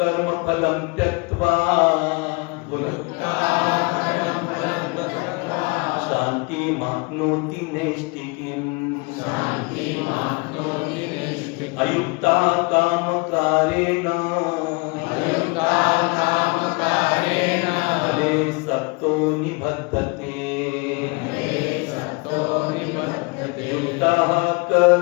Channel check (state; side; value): quieter; right; 28.9 dB